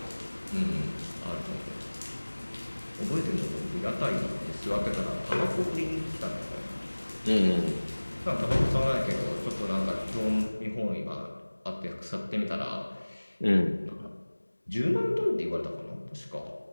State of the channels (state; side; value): inverted; both; correlation -1.00